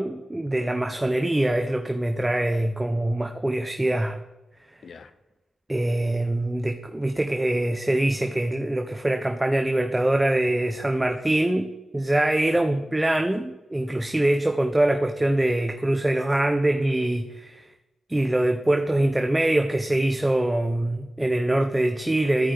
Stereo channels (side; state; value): both; normal; correlation 0.98